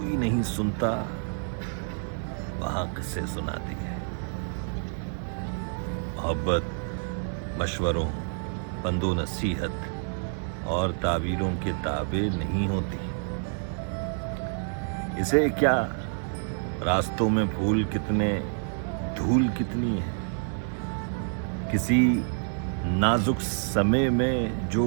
نہیں سنتا وہاں قصے سناتی ہے۔ محبت مشوروں، پند و نصیحت اور تعویلوں کے تابع نہیں ہوتی۔ اسے کیا راستوں میں پھول کتنے، دھول کتنی ہے، کسی نازک سمے میں جو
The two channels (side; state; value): left; silent; 59 dB below the other